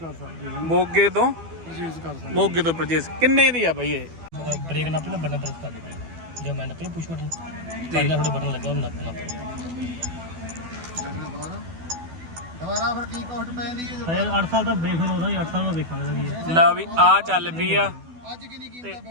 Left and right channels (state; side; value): late; left; 12 ms